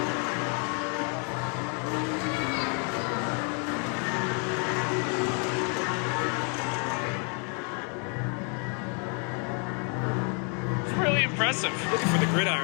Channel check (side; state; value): right; quieter; 38.6 dB